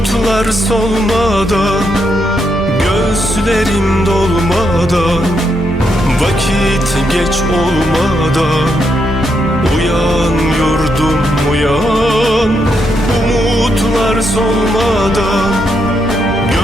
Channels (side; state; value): both; normal; correlation 0.80